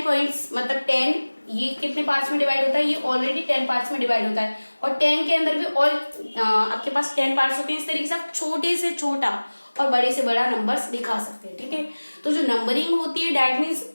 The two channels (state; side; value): inverted; both; correlation -1.00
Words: पॉइंट्स मतलब 10, ये कितने पार्ट्स में डिवाइड होता है, ये ऑलरेडी 10 पार्ट्स में डिवाइड होता है. और 10 के अंदर भी और आपके पास 10 पार्ट्स होते हैं. इस तरीके से आप छोटे से छोटा और बड़े से बड़ा नंबर्स दिखा सकते हैं. ठीक है. तो जो नंबरिंग होती है दैट मीन्स